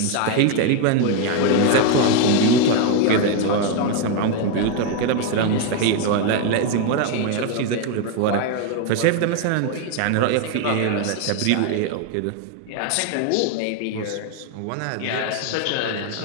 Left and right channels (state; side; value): different; both; correlation 0.01